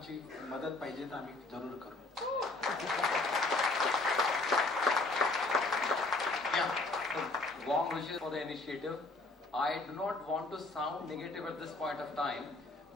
मदत पाहिजे तर आम्ही जरूर करू. Warm wishes for the initiative. I do not want to sound negative at this point of time,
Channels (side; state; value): right; quieter; 3.1 dB